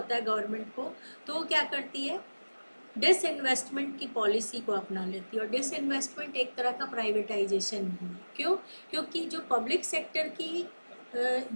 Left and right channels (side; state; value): both; inverted; correlation -1.00